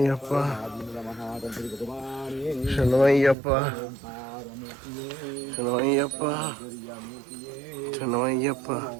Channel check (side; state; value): left; drops out; at 3.4 s